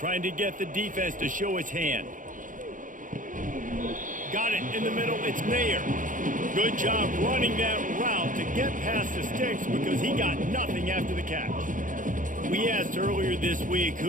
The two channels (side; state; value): left; late; 0.38 ms